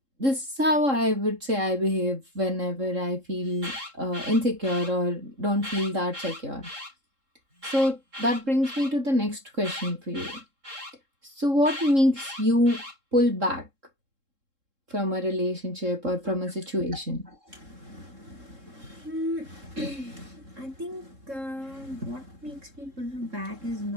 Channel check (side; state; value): left; late; 3.7 ms